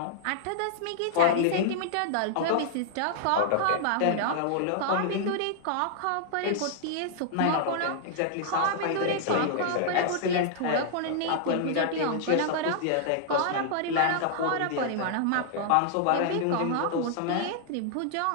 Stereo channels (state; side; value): different; both; correlation -0.01